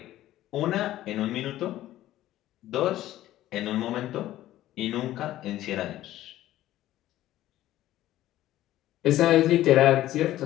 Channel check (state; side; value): quieter; right; 14.3 dB